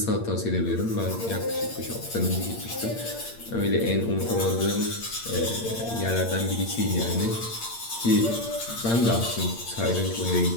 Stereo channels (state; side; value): late; right; 8.7 ms